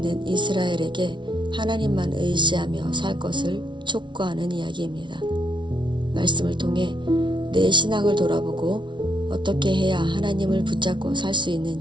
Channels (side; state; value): left; late; 0.24 ms